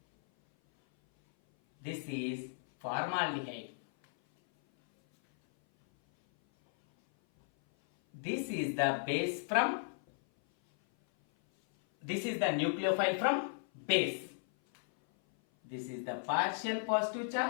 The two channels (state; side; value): silent; right; 55 dB below the other